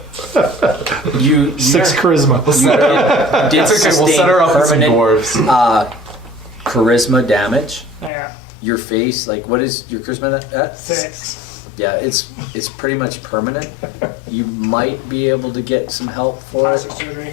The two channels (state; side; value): drops out; right; at 8.1 s